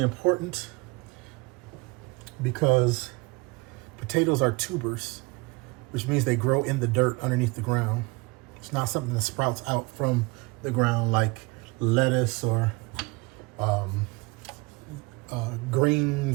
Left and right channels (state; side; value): quieter; left; 25.3 dB